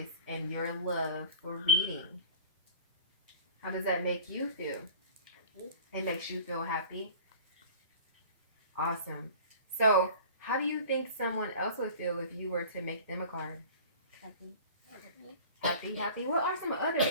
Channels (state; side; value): inverted; both; correlation -0.41